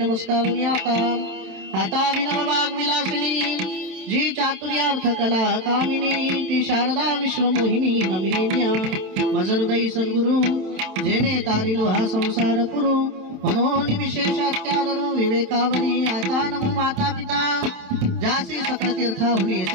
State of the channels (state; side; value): late; left; 27 ms